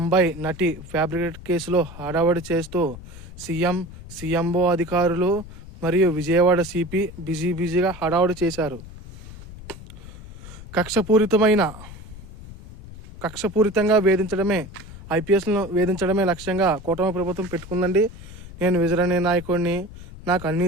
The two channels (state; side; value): noise; left; rumble, 15 dB below the sound